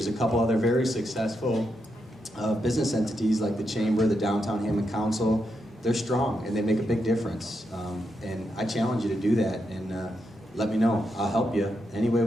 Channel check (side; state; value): both; normal; correlation 0.83